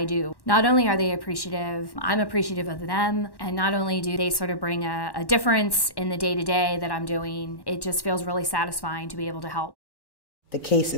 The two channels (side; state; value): right; late; 1.1 ms